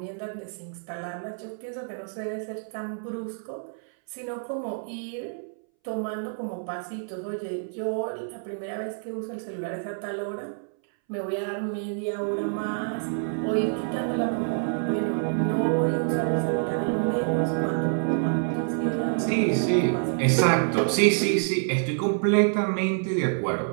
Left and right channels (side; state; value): left; silent; 60 dB below the other